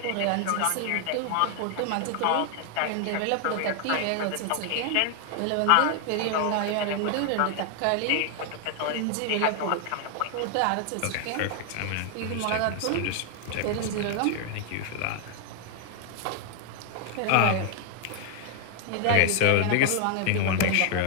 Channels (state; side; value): different; both; correlation 0.00